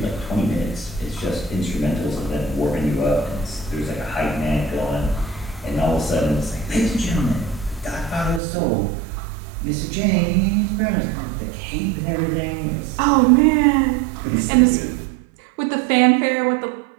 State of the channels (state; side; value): drops out; left; at 8.4 s